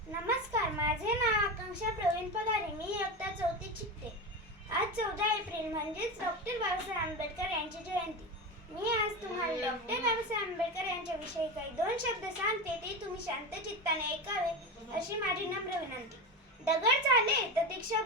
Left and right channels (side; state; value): both; normal; correlation 0.21